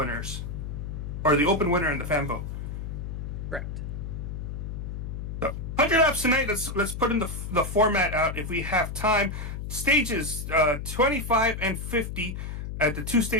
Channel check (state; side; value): noise; left; hum, 6 dB below the sound